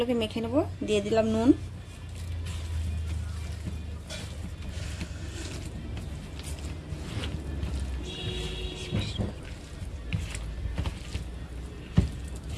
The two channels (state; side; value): identical; both; correlation 1.00